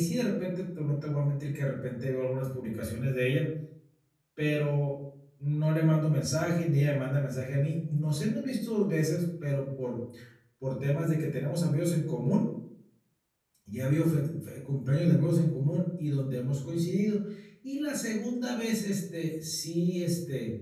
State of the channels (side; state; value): both; identical; correlation 1.00